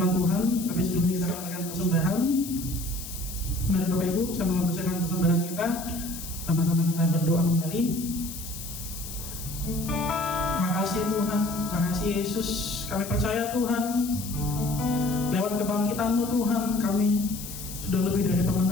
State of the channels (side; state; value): left; noise; hiss, 10 dB below the sound